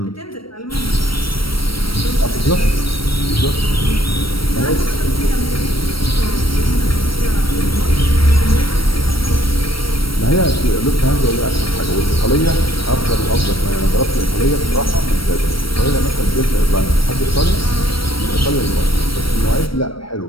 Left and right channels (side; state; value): right; late; 0.75 ms